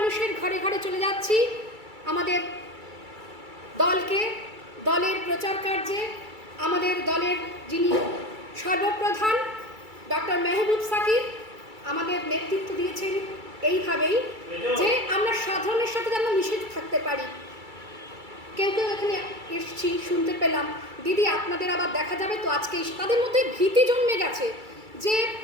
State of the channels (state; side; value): late; left; 2.3 ms